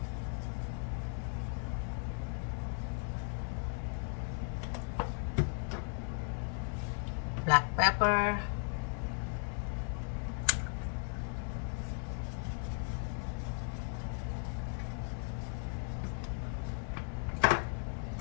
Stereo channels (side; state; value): right; silent; 53 dB below the other